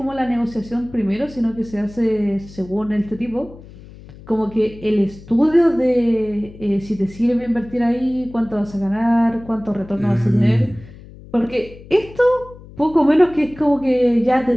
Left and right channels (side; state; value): left; noise; hum, 19 dB below the sound